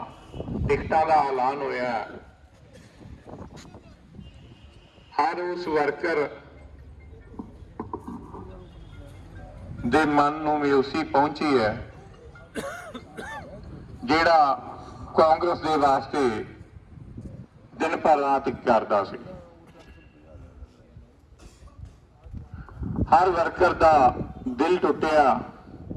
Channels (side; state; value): both; identical; correlation 1.00